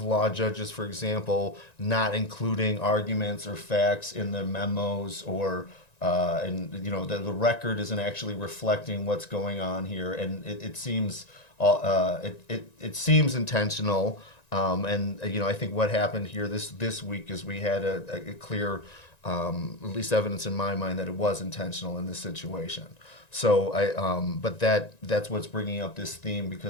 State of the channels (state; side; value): late; right; 1.9 ms